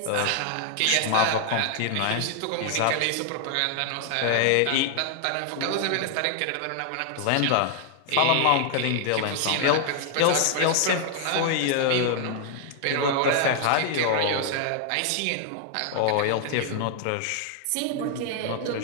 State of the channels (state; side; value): different; both; correlation 0.00